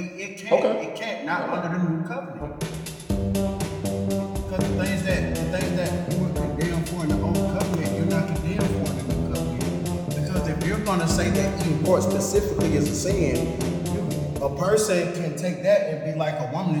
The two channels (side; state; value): both; identical; correlation 1.00